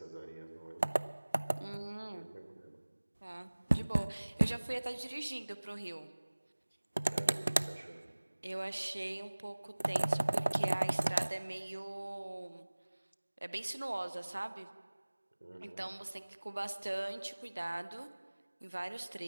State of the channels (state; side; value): inverted; both; correlation -1.00